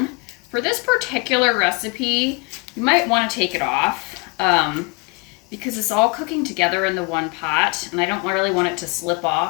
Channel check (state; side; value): quieter; right; 30.3 dB